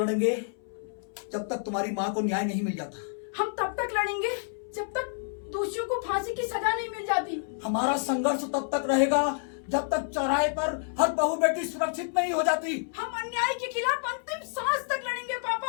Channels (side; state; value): right; silent; 59 dB below the other